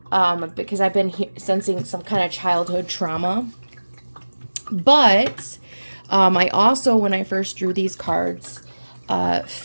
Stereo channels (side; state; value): both; inverted; correlation -1.00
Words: because I've been sensing some kind of childhood trauma. But I also, when I first drew these cards,